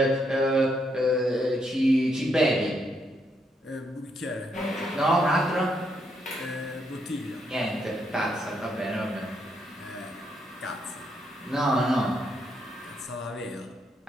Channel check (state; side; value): normal; both; correlation 0.76